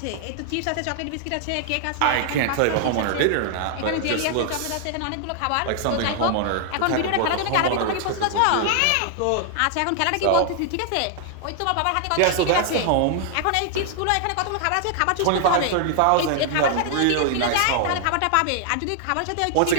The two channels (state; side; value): different; both; correlation -0.01